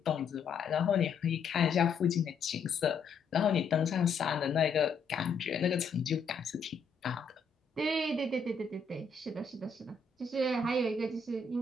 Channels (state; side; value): quieter; right; 4.8 dB